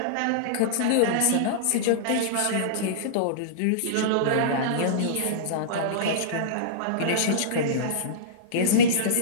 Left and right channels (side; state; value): both; different; correlation -0.03